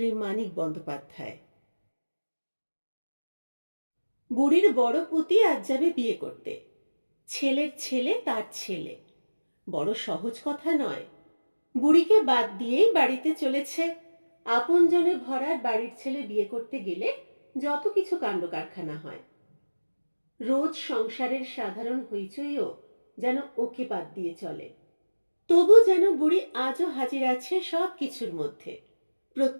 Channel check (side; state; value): both; inverted; correlation -1.00